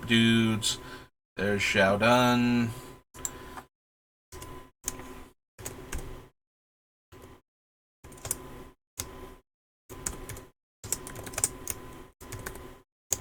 dudes. There's Xiaodun.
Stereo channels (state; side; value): identical; both; correlation 1.00